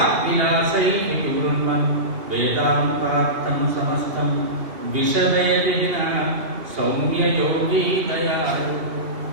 వివృణ్మన్ వేదాంతార్థం సమస్తం విశదే విహిన సౌమ్యయోగీ దయాళు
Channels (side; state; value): left; late; 2.7 ms